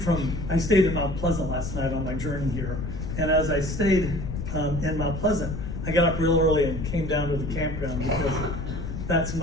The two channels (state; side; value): noise; left; rumble, 5 dB below the sound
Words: I stayed in Mount Pleasant last night on my journey here, and as I stayed in Mount Pleasant, I got up real early and came down to the campground because that's